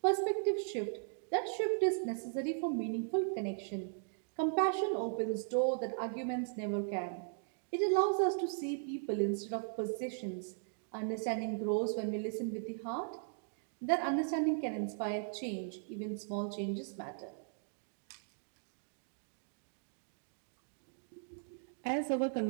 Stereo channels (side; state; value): left; silent; digital silence